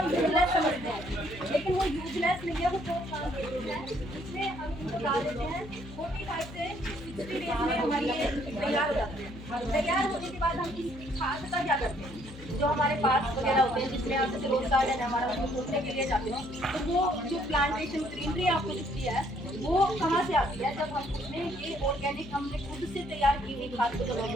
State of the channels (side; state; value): left; noise; hum, 15 dB below the sound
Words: यूजलेस समझते हैं, लेकिन वो यूजलेस नहीं है, वो बहुत काम करते हैं। इसमें हम इनको डाल देते हैं 45 से 60 डेज में हमारी ये तैयार हो जाते हैं। तैयार होने के बाद हम इसकी खाद का क्या करते हैं, जो हमारे पास वगैरह होते हैं जिसमें आप जैसे रोज गार्डन है हमारा, उसको खोदने के लिए जाते हैं, तो वो जो प्लांटेशन ग्रीनरी आपको दिखती है वो कहाँ से आती है, जब हम उसमें ये ऑर्गेनिक हमने खुद से तैयार की हुई खाद को जब हम